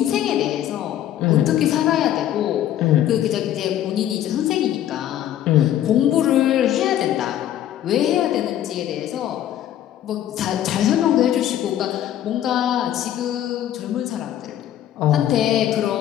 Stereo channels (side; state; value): right; quieter; 11.7 dB